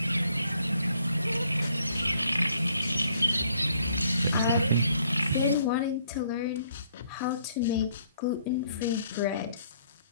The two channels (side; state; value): both; inverted; correlation -0.67